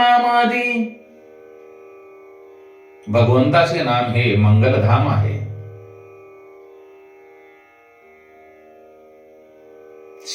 भगवंताचे नाम हे मंगलधाम आहे।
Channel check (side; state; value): both; identical; correlation 1.00